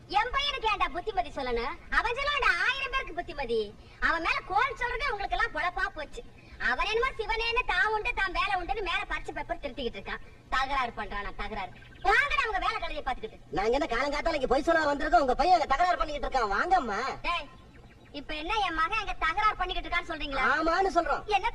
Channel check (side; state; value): both; identical; correlation 1.00